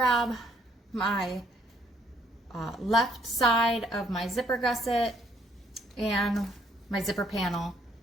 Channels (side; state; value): both; normal; correlation 0.67